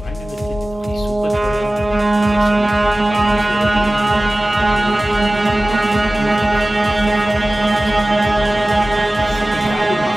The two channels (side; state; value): both; normal; correlation 0.97